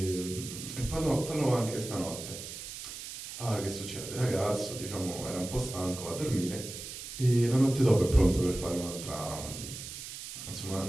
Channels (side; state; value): right; noise; hiss, 10 dB below the sound